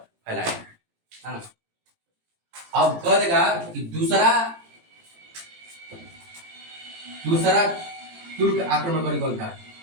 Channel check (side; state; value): left; late; 18 ms